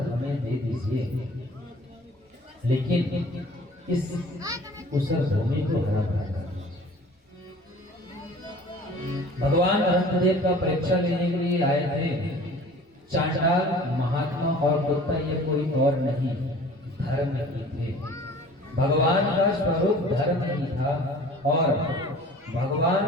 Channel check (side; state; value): both; normal; correlation 0.46